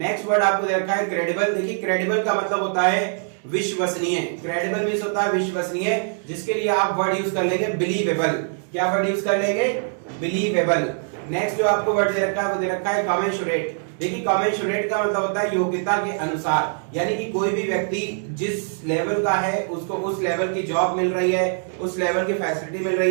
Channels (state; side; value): silent; left; digital silence